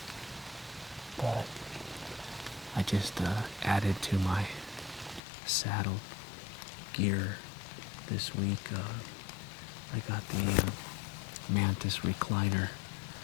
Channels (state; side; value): drops out; right; at 5.2 s